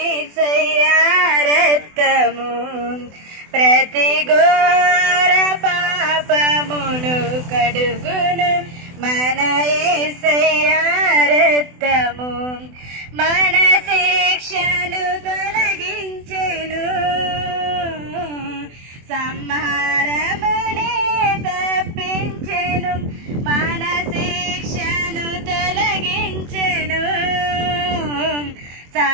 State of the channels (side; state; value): left; late; 24 ms